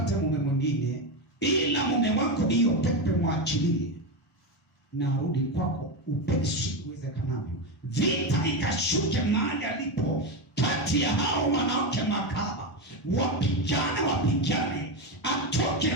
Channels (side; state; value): both; normal; correlation 0.13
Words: mume mwingine, ila mume wako hiyo pepe mwachilie na arudi kwako upesi uwezekanavyo. Vita ikashuke mahali alipo kati ya hao wanawake makahaba, wapigane, atoke